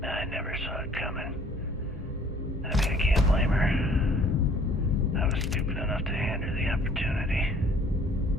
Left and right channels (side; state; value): both; normal; correlation 0.56